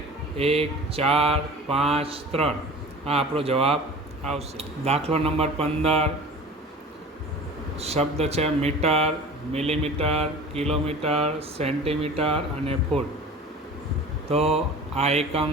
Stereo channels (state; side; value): normal; both; correlation 0.40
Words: 1, 4, 5, 3. આ આપણો જવાબ આવશે. દાખલો નંબર 15 શબ્દ છે મીટર, મિલીમીટર, કિલોમીટર, સેન્ટીમીટર અને ફૂટ. તો આ એકમ